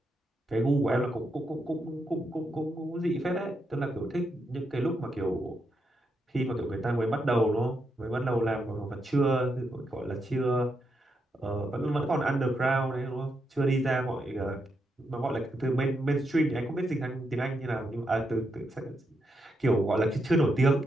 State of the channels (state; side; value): normal; both; correlation 0.82